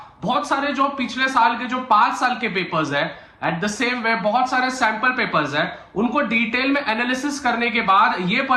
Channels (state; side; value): identical; both; correlation 1.00